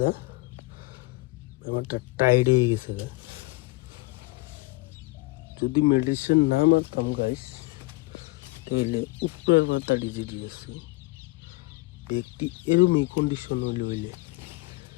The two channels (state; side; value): quieter; right; 23.0 dB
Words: না ব্যাপারটা টাইট হয়ে গেছে। যদি মেডিসিন না মারতাম গাইস, তাহলে উপরের মাথাটি যেটি আছে ব্যক্তি এরকমই কন্ডিশন হইলে